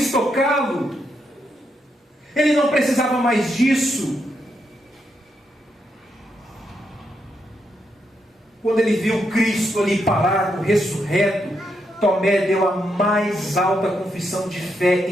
tocá-lo. Ele não precisava mais disso. Quando ele viu Cristo ali parado, ressurreto, Tomé deu a mais alta confissão de fé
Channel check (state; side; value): normal; both; correlation 0.81